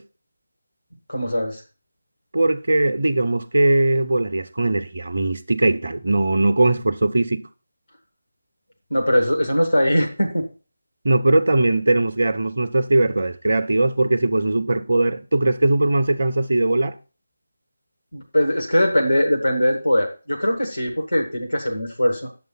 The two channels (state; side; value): inverted; both; correlation -0.96